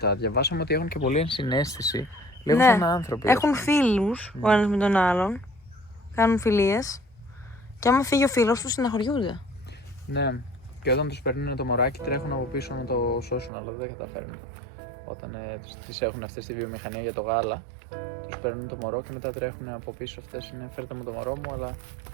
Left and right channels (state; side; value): drops out; left; at 13.5 s